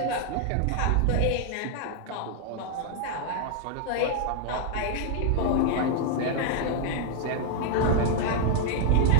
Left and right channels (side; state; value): both; different; correlation 0.00